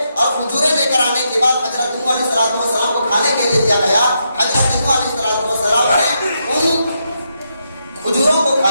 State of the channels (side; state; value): both; inverted; correlation -0.81